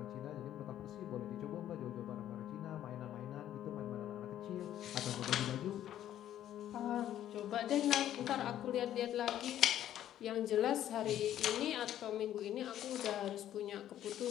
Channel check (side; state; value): right; quieter; 11.7 dB